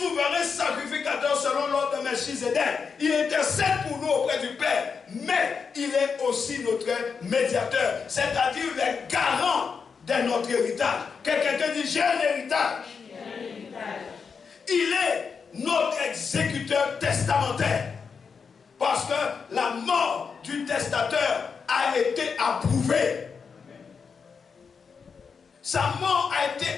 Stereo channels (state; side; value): quieter; right; 5.7 dB